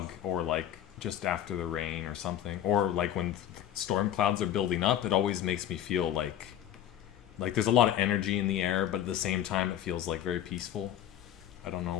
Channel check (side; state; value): right; quieter; 11.1 dB